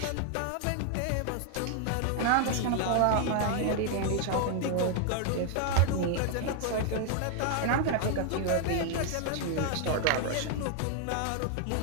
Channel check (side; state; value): both; different; correlation 0.00